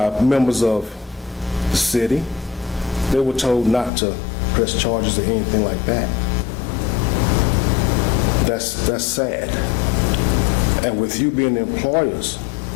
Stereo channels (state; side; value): drops out; right; at 3.9 s